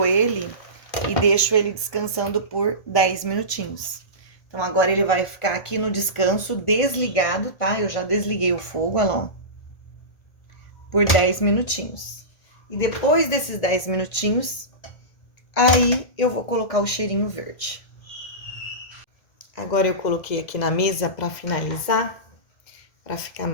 ele e deixo ele descansando por 10 minutinhos. Então, agora ele vai ficar aqui no descanso, desligado, tá? Eu já desliguei o fogo, olha lá, ó, por 10 minutinhos. E depois desses 10 minutinhos, aí eu vou colocar o cheirinho verde. Agora, eu coloquei aqui na mesa pra finalizar, pra ficar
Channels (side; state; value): right; late; 1.6 ms